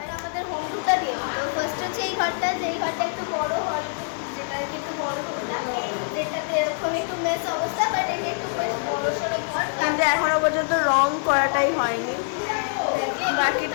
আমাদের হোম টুরটা দিয়ে দিল। ফার্স্ট হচ্ছে এই ঘরটা, যেই ঘরটা একটু বড় হল, যেটাকে একটু বড় যেটাতে এরকম একটু মেস অবস্থা, বাট এটা একটু বেশ বড় সড়ো ঘর। কিন্তু এখনো পর্যন্ত রং করাটাই হয়নি, বাকি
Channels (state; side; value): silent; right; 62 dB below the other